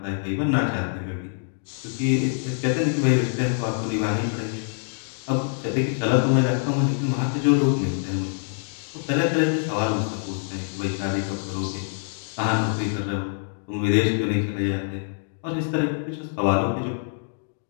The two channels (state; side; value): silent; right; digital silence